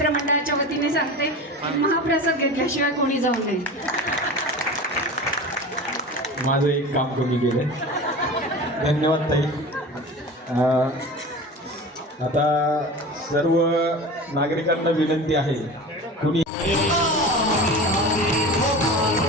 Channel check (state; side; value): normal; both; correlation 0.33